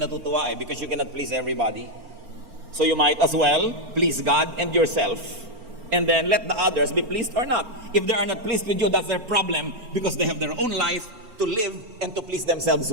natutuwa because you cannot please everybody. So you might as well please God and yourself. And then let the others be pleased or not. If they are not pleased with you, that's their problem because they have their own life to live and to please themselves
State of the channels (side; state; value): left; late; 4.4 ms